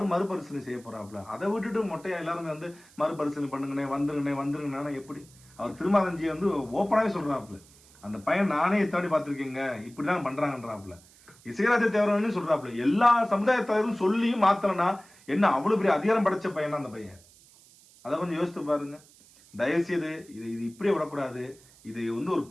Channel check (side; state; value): right; noise; hiss, 26 dB below the sound